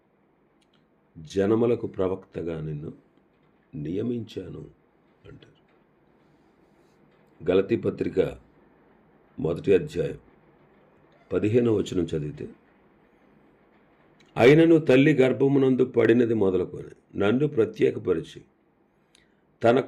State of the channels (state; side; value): identical; both; correlation 1.00